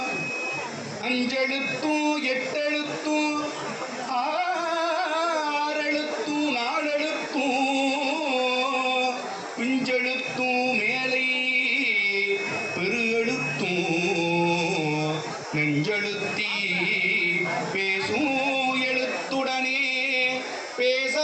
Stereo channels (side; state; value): both; identical; correlation 1.00